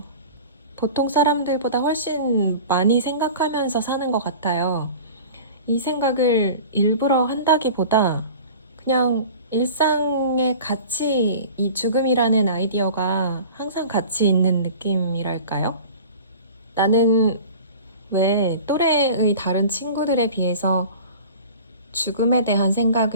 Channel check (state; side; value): inverted; both; correlation -0.40